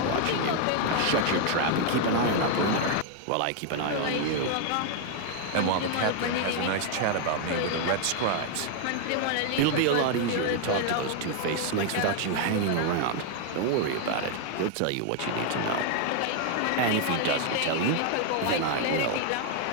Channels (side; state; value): both; different; correlation 0.00